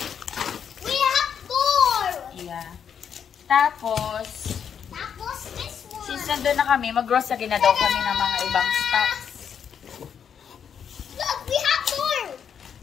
We have 4. Yeah. Tapos, This one. since nandun na kami, mag-grocery na daw kami ng mga ibang stocks. Look, we have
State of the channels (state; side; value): quieter; right; 7.8 dB